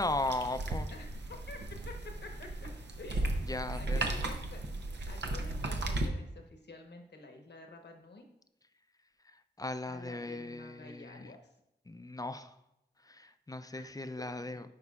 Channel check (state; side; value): normal; both; correlation 0.63